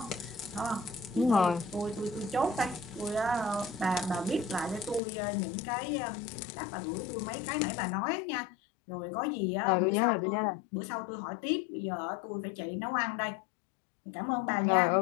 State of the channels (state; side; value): drops out; right; at 5.0 s